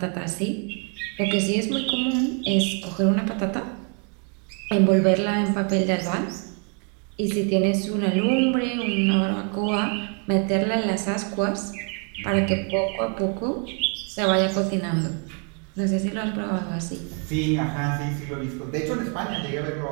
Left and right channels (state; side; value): quieter; left; 38.4 dB